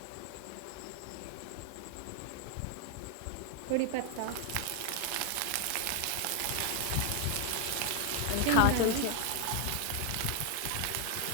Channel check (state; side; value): different; both; correlation 0.01